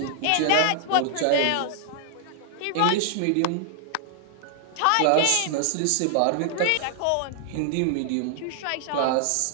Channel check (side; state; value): both; different; correlation 0.00